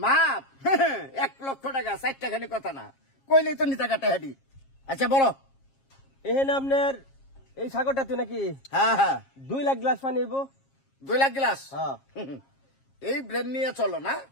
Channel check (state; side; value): late; right; 7.4 ms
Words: মাপ 1 লক্ষ টাকা 4 টাকানি কথা না, কইলেই তো নিতা কাটা হাডি। আচ্ছা বলো। এহেন আপনার এই সাগরটাতে নাকি হ্যাঁ হ্যাঁ 2 লাখ গ্লাস পানি হইব? 2 লাখ গ্লাস। হ্যাঁ এই ব্রেন নিয়ে চলো না,